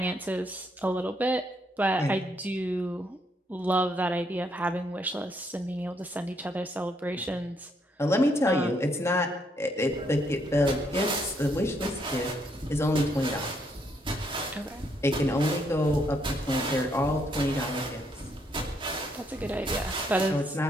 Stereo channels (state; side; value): normal; both; correlation 0.73